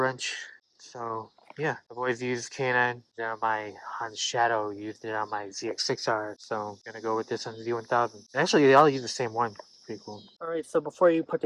So yeah, I've always used K&N on my Honda Shadow, used it on my ZX6R, so I'm gonna go with this on the Z1000. Actually, they all use the same one. Pretty cool. Alright, so before you put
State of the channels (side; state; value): both; identical; correlation 1.00